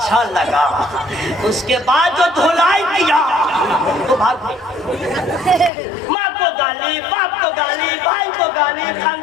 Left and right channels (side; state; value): right; drops out; at 5.7 s